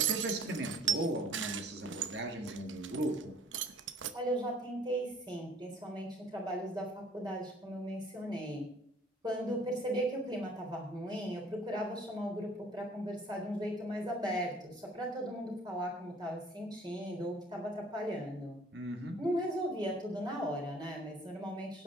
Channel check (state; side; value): normal; both; correlation 0.54